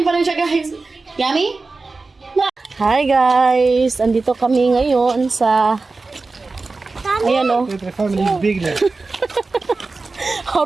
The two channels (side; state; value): left; quieter; 3.8 dB